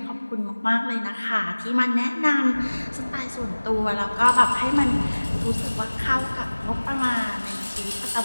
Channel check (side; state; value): both; inverted; correlation -1.00